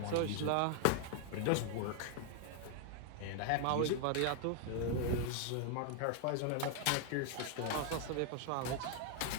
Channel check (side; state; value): both; different; correlation 0.00